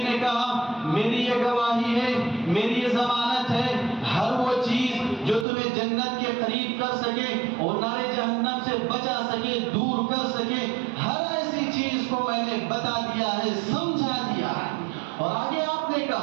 نے کہا میری یہ گواہی ہے، میری یہ ضمانت ہے، ہر وہ چیز جو تمہیں جنت کے قریب کر سکے اور نار جہنم سے بچا سکے، دور کر سکے، ہر ایسی چیز کو میں نے بتا دیا ہے، سمجھا دیا ہے۔ اور آگے آپ نے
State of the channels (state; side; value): drops out; left; at 5.5 s